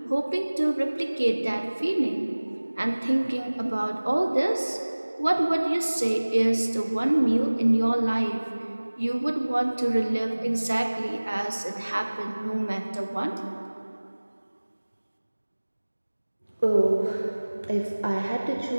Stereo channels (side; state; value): both; inverted; correlation -1.00